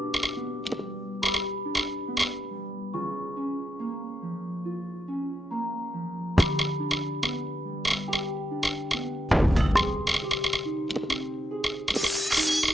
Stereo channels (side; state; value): both; normal; correlation 0.82